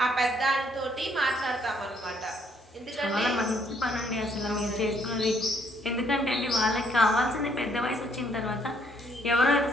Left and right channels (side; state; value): both; normal; correlation 0.68